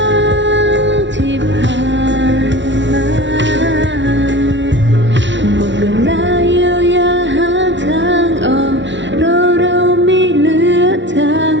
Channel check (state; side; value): late; left; 0.54 ms